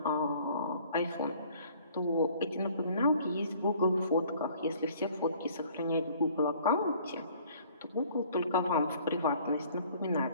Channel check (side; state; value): both; inverted; correlation -0.55